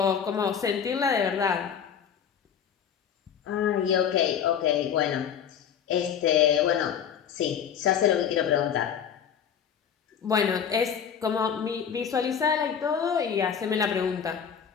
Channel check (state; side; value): quieter; right; 7.9 dB